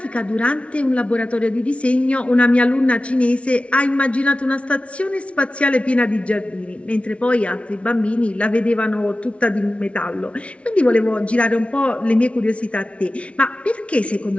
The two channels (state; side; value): late; right; 0.062 ms